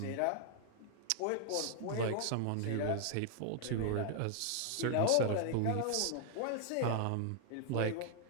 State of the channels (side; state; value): both; different; correlation 0.00